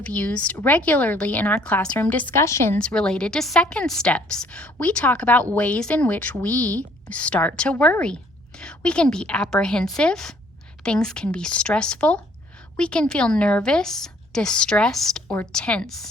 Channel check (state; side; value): normal; both; correlation 0.61